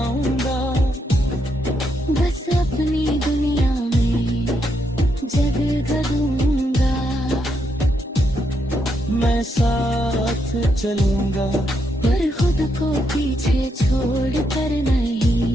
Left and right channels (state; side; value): normal; both; correlation 0.79